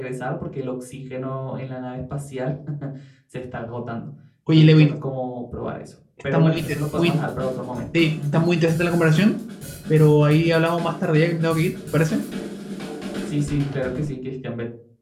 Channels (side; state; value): both; identical; correlation 1.00